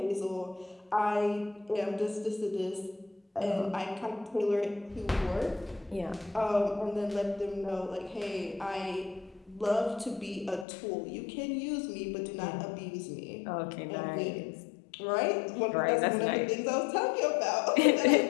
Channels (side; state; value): right; drops out; at 10.7 s